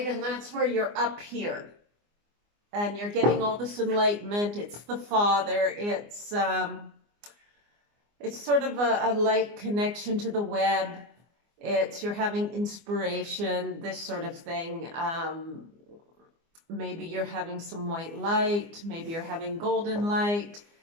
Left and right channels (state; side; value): late; left; 24 ms